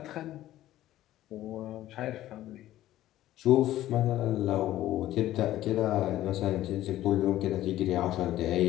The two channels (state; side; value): quieter; right; 14.1 dB